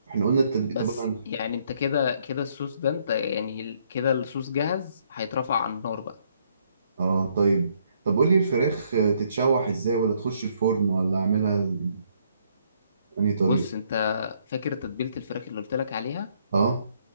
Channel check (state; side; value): inverted; both; correlation -0.69